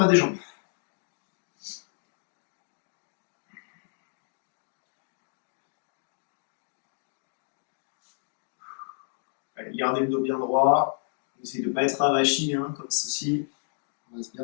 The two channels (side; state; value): right; silent; digital silence